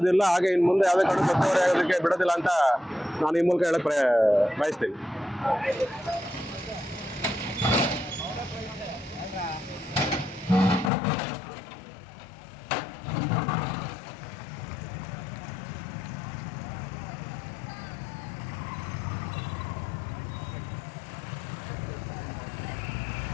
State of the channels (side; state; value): right; drops out; at 10.9 s